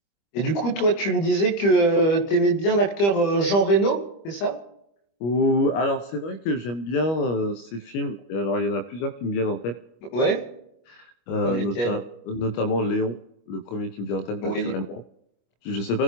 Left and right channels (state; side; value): late; right; 25 ms